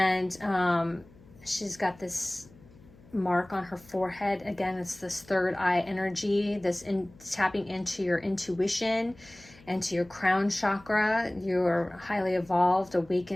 she's got this mark on her forehead. Again, it's this third eye energy, tapping into your intuition and to your crown chakra. You're a highly evolved,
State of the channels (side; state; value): left; noise; hum, 25 dB below the sound